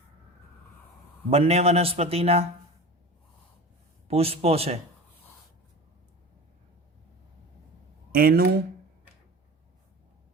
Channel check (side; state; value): both; normal; correlation 0.33